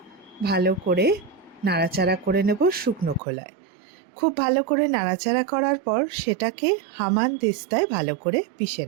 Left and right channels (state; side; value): drops out; left; at 3.2 s